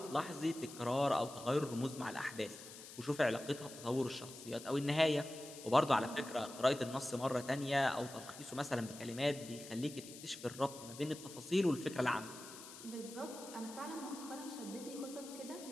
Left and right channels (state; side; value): noise; left; hiss, 14 dB below the sound